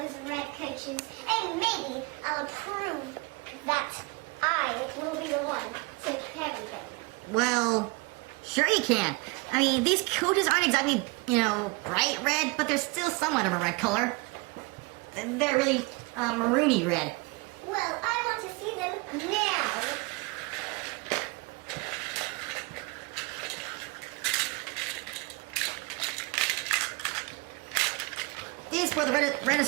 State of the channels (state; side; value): quieter; left; 27.1 dB